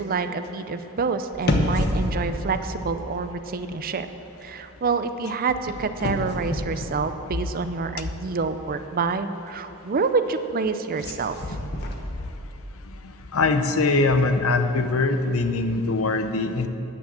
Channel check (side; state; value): both; normal; correlation 0.26